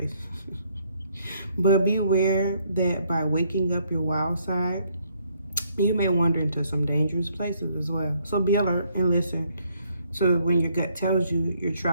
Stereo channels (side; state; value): both; inverted; correlation -0.69